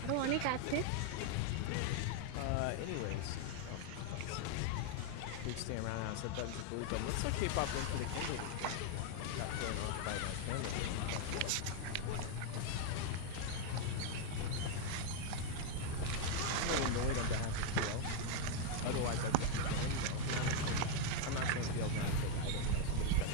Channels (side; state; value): both; different; correlation 0.01